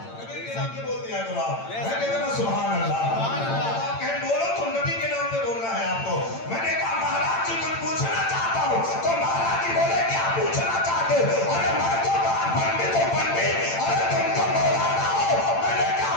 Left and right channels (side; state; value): right; late; 8.9 ms